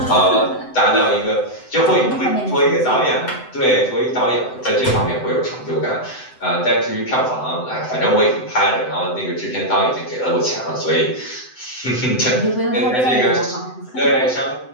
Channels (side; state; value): right; late; 7.9 ms